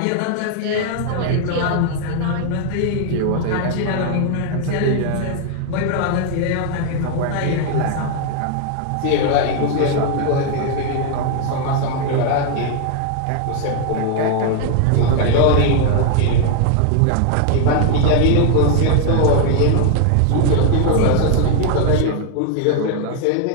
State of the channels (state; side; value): different; both; correlation 0.00